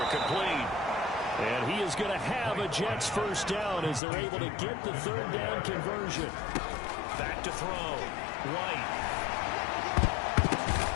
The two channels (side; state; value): right; drops out; at 4.0 s